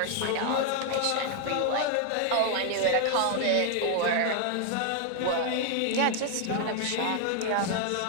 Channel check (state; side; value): different; both; correlation 0.00